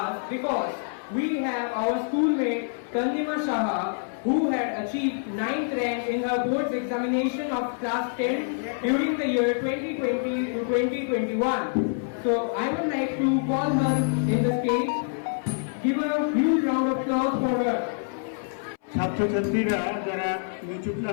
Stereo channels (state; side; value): silent; right; 61 dB below the other